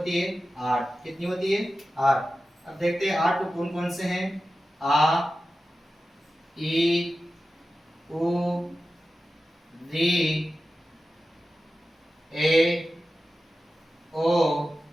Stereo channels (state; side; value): normal; both; correlation 0.93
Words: है? 8। कितनी होती है? 8। अब देखते हैं 8 कौन कौन से हैं? आ, ई, उ, री, ए, ओ,